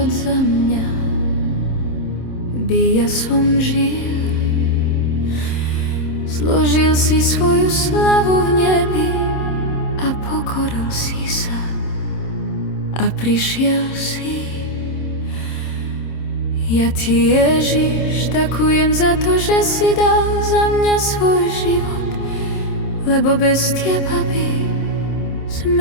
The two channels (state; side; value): late; right; 27 ms